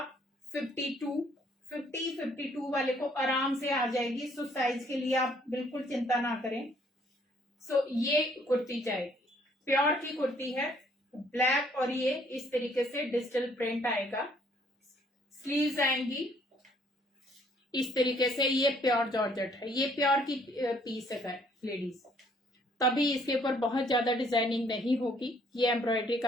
52, 52 वाले को आराम से आ जाएगी। सो साइज के लिए आप बिल्कुल चिंता ना करें। सो ये कुर्ती जाएगी, प्योर की कुर्ती है, ब्लैक, और ये इस तरीके से डिजिटल प्रिंट आएगा। स्लीव्स आएंगी इस तरीके से। ये प्योर जॉर्जेट है, ये प्योर की पीस है लेडीज, तभी इसके ऊपर बहुत ज्यादा डिजाइनिंग नहीं होगी। ये एम्ब्रॉयडरी का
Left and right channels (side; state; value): both; normal; correlation 0.63